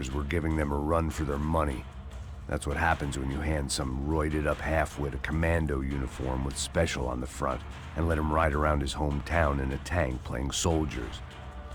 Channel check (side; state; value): both; identical; correlation 1.00